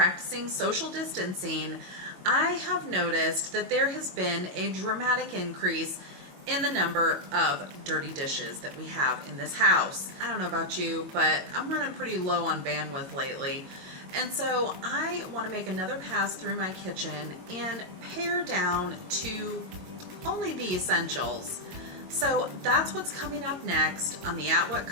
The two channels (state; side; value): late; left; 22 ms